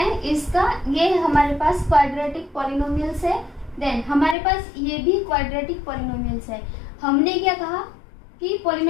इसका ये हमारे पास क्वाड्रेटिक पॉलिनोमियल्स है, देन हमारे पास ये भी क्वाड्रेटिक पॉलिनोमियल्स है। हमने क्या कहा कि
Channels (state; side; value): drops out; right; at 4.4 s